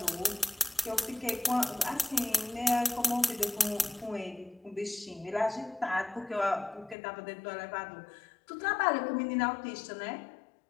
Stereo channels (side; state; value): right; drops out; at 7.0 s